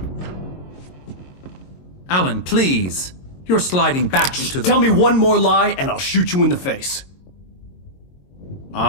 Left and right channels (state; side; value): late; right; 22 ms